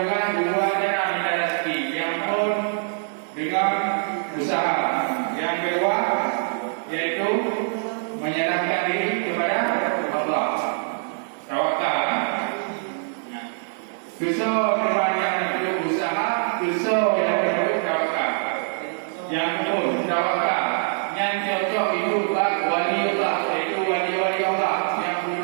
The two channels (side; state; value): left; silent; digital silence